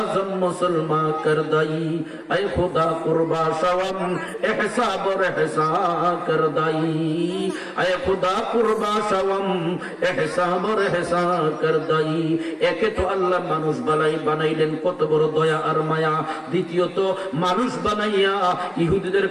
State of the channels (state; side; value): identical; both; correlation 1.00